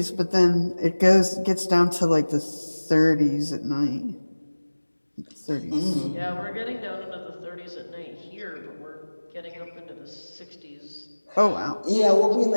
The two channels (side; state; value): both; inverted; correlation -1.00